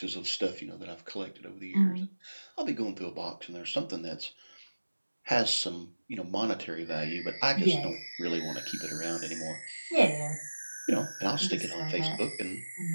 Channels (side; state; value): both; inverted; correlation -1.00